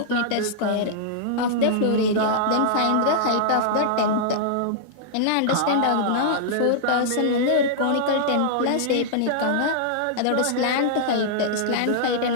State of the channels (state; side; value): different; both; correlation -0.02